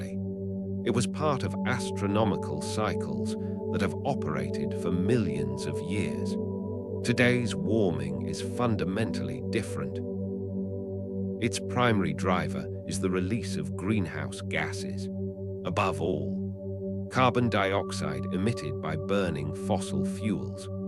It was part of astronomical cycles that have operated for millions of years. Today's warming is fundamentally different. Its primary driver is the release of greenhouse gases. Above all, carbon dioxide emitted by burning fossil fuels.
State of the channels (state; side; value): identical; both; correlation 1.00